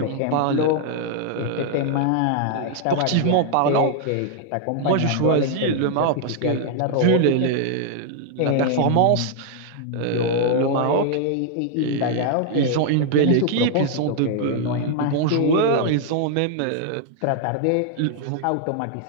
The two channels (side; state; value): both; different; correlation 0.00